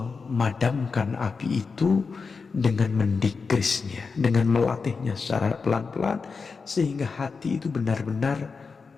api itu dengan mendikrisnya, dengan melatihnya secara pelan-pelan sehingga hati itu benar-benar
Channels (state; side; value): quieter; right; 4.9 dB